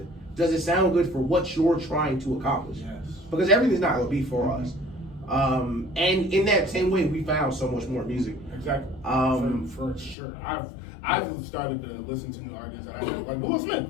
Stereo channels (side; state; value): right; drops out; at 10.2 s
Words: Does it sound good for what you're trying to accomplish? Yes. Because everything's not going to be for us. And in that same way, we found so much more music. Exactly. For sure. I've started to listen to new artists. And I like Will Smith.